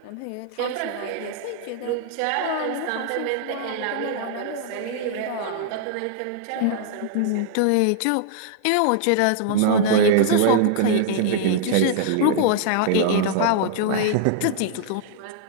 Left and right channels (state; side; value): different; both; correlation -0.01